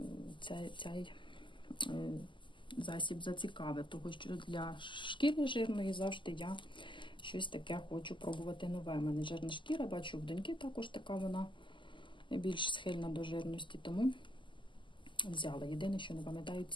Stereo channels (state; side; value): late; right; 0.24 ms